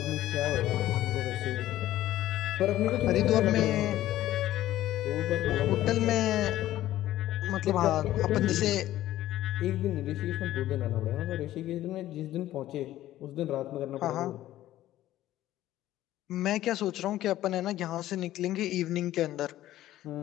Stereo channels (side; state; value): right; quieter; 14.1 dB